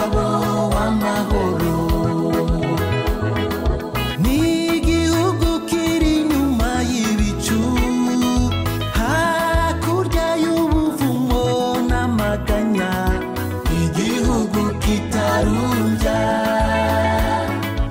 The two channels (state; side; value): identical; both; correlation 1.00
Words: w'amahoro. N'igihugu kiri inyuma y'ibicu, hakurya y'ubuvumo n'amaganya, igihugu kitarumbya,